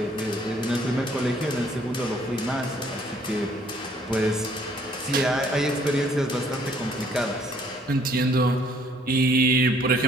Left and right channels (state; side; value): normal; both; correlation 0.62